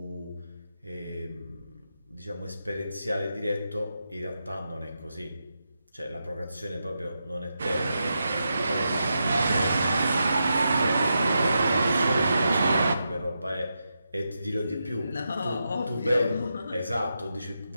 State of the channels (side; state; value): both; inverted; correlation -0.86